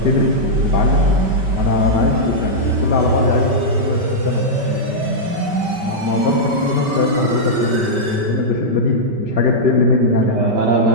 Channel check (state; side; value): late; left; 5.2 ms